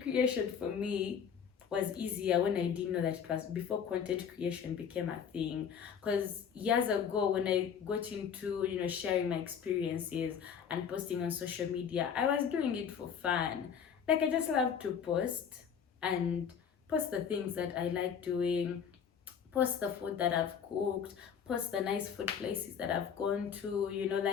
creation for me was easier when I didn't know that it was before content creation became a thing. Because years ago, when I got into sharing my experiences and posting on social media, I was doing it for fun. Like I just love to post and post the things that I like doing, post the food that I've cooked, post the nice food places that I've gone to,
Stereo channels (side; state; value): right; quieter; 7.5 dB